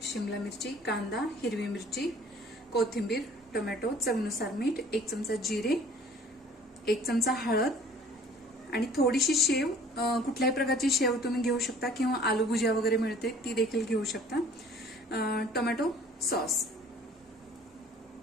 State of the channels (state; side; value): normal; both; correlation 0.51